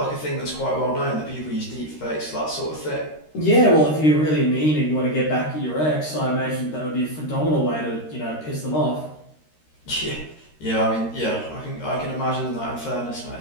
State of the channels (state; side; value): late; right; 13 ms